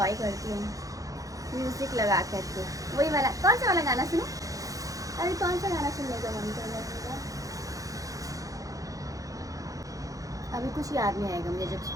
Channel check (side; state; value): left; late; 0.17 ms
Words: करती हूँ म्यूजिक लगा करके। वही वाला, कौन सा वाला गाना सुनो? अरे कौन सा गाना सुनने का मन कर रहा है? अभी कुछ याद नहीं आएगा मुझे जब